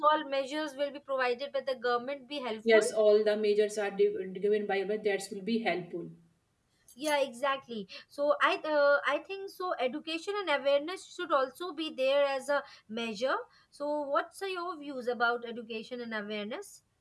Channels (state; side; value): identical; both; correlation 1.00